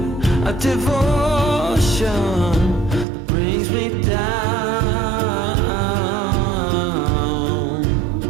of devotion that brings me down.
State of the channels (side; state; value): left; drops out; at 3.1 s